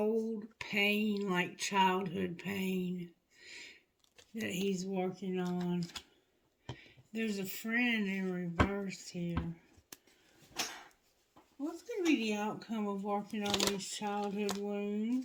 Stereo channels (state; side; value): identical; both; correlation 1.00